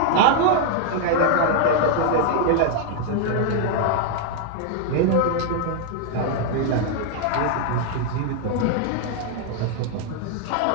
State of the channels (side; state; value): both; different; correlation 0.00